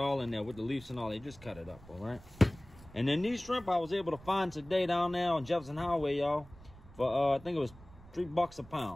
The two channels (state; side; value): noise; right; rumble, 21 dB below the sound